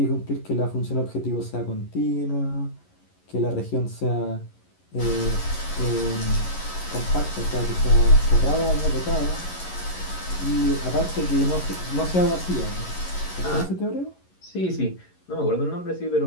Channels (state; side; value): late; right; 11 ms